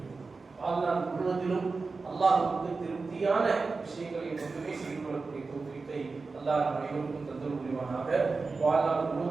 வாழ்நாள் முழுவதிலும் அல்லாஹ்வுக்கு திருப்தியான விஷயங்களை மட்டுமே செயல்படக்கூடிய தௌஃபீகை அல்லாஹ் நம் அனைவருக்கும் தந்தருள் புரிவானாக. வாழ்நாள்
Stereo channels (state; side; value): quieter; left; 4.1 dB